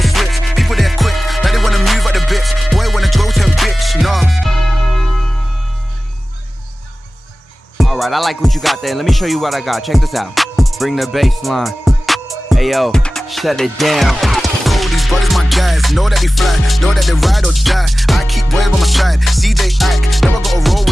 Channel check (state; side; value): normal; both; correlation 0.96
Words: switch. Alright, I like what you got there. Let me show you what I got. Check this out. Bring the bass line. Ayo, shut it down. These brothers my guys, know that we fly, know that they ride or die. I keep boys by my side, CJ Ike, never gotta roll